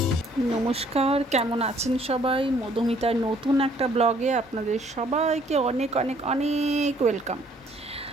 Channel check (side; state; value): both; normal; correlation 0.62